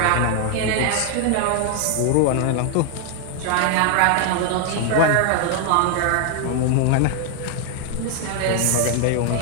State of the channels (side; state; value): both; different; correlation 0.00